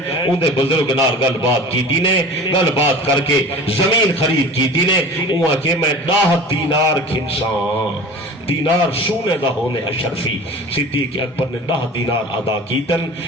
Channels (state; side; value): normal; both; correlation 0.38